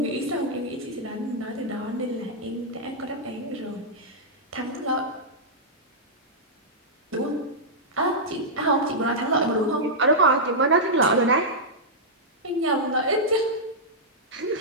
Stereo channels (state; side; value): normal; both; correlation -0.10